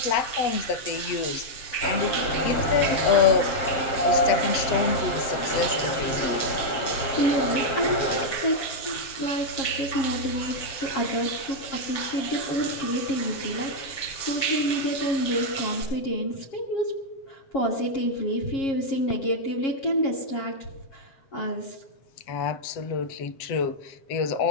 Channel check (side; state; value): right; late; 7.5 ms